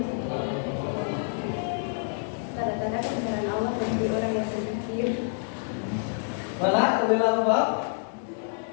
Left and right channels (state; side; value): silent; right; 60 dB below the other